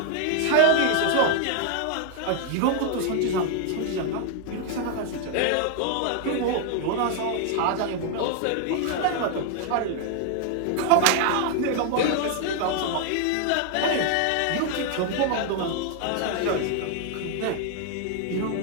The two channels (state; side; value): different; both; correlation 0.00